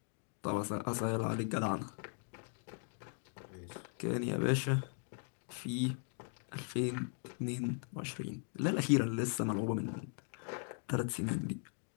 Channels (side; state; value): right; silent; 52 dB below the other